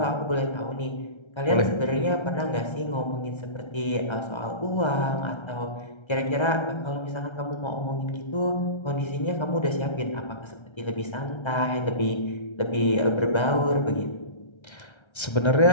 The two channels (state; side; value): late; right; 1.3 ms